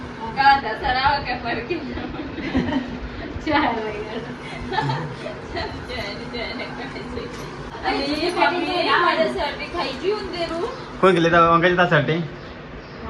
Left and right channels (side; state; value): both; identical; correlation 1.00